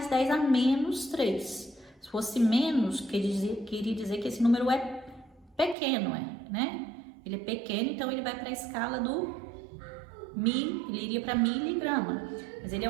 10 a menos 3. Se fosse menos, queria dizer que esse número é pequeno, né? Ele é pequeno, então ele vai para a escala do ele iria para miligrama. Mas ele é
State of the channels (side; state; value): left; drops out; at 5.8 s